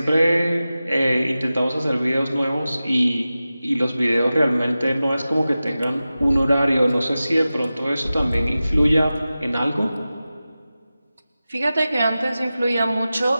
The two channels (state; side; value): inverted; both; correlation -0.95